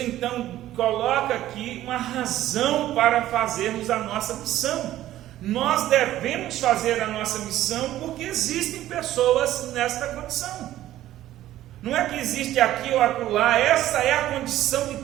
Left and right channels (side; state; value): left; quieter; 13.7 dB